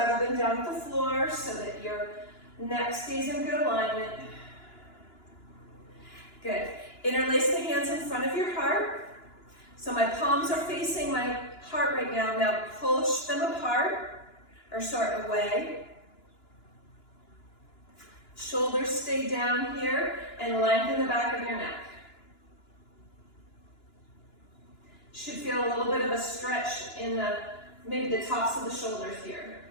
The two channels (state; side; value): late; right; 2.9 ms